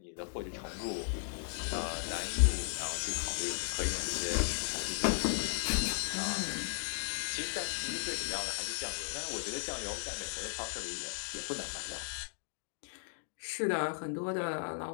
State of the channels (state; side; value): silent; right; digital silence